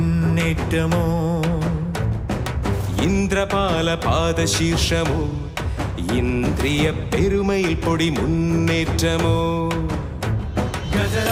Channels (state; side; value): identical; both; correlation 1.00